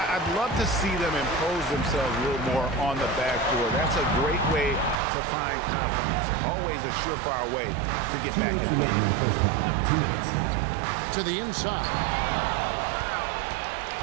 I'd love to see them impose themselves a little more on the backboard. That's a great way to find confidence. Always a surefire way to get back in the game. To the inside.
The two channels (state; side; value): drops out; left; at 5.0 s